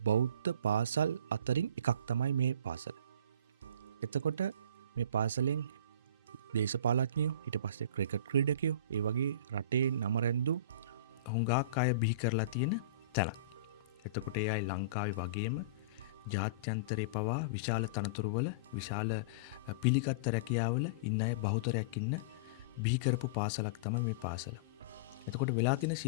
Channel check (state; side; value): inverted; both; correlation -0.32